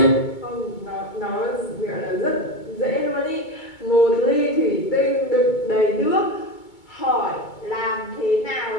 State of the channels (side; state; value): right; late; 2.2 ms